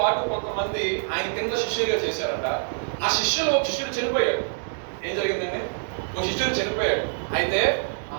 కొంతమంది ఆయన కింద శిష్యులుగా చేశారంట. ఆ శిష్యులు ఒక శిష్యుడు చనిపోయాడు. ఏం జరిగిందండి, ఒక శిష్యుడు చనిపోయాడు. అయితే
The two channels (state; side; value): silent; left; digital silence